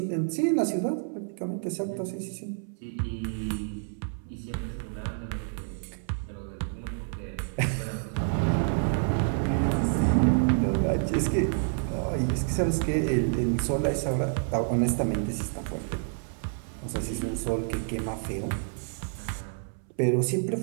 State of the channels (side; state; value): left; silent; 59 dB below the other